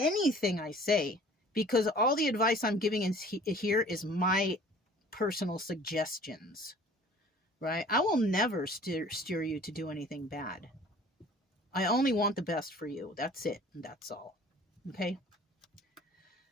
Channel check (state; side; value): normal; both; correlation 0.49